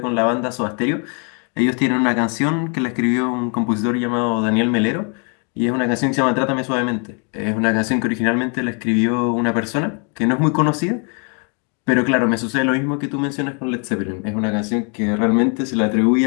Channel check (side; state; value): right; quieter; 37.9 dB